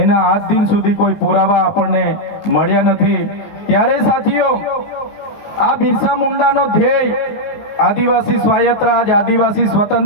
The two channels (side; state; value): right; late; 20 ms